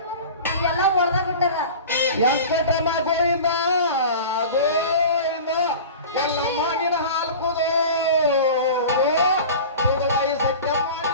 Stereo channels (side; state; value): both; inverted; correlation -0.36